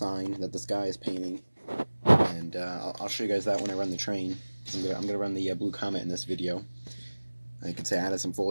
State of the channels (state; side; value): inverted; both; correlation -1.00